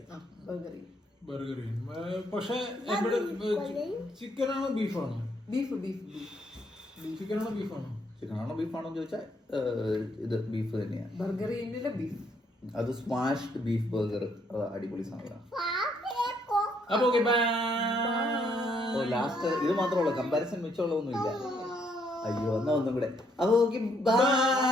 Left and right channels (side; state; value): both; normal; correlation 0.71